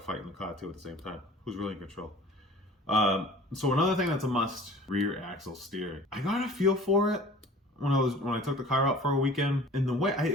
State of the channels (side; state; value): both; normal; correlation 0.45